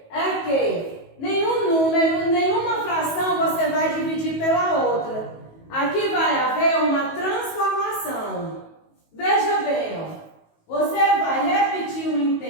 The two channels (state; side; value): late; right; 19 ms